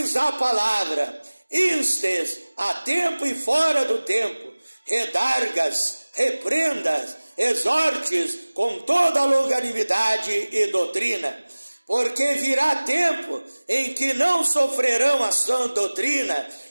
a palavra, instes a tempo e fora do tempo, redargas, reprendas, exortes com toda a longanimidade e doutrina, porque virá tempo em que não sofrerão a sã doutrina,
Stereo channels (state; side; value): inverted; both; correlation -1.00